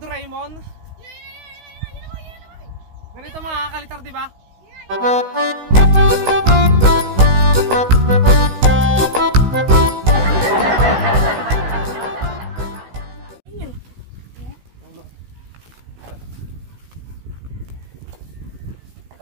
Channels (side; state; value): left; late; 16 ms